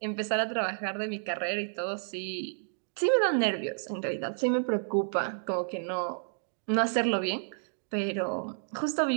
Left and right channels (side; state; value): left; silent; digital silence